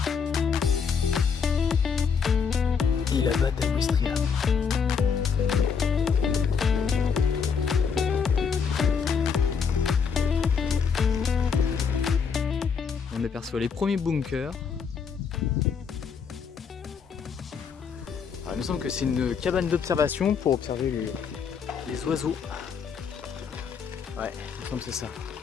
et la batte à Ouistreham. On aperçoit les premiers bunkers. Alors, il me semble que c'est une cabane d'observation pour observer les oiseaux. Ouais, il me semble que c'est ça.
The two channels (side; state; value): right; quieter; 6.2 dB